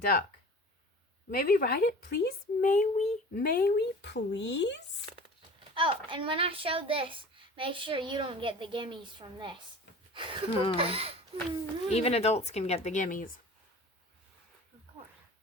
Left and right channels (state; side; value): normal; both; correlation 0.40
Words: May we ride it, please? May we, please? Oh, and when I show this, make sure you don't get the gimmies from this. Even adults can get the gimmies. Of course.